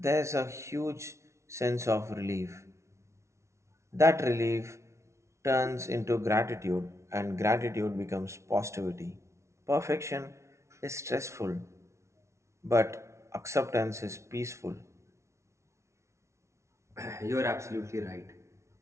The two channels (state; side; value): late; left; 0.13 ms